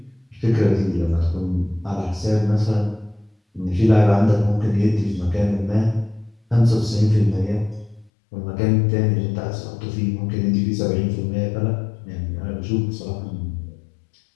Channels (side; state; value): right; drops out; at 8.1 s